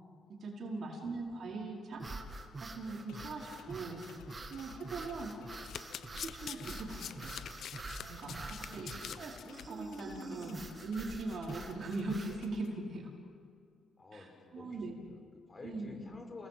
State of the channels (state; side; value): normal; both; correlation 0.77